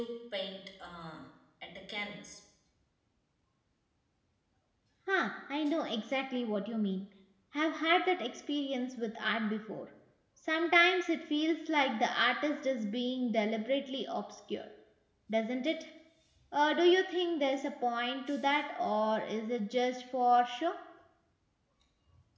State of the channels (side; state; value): both; identical; correlation 1.00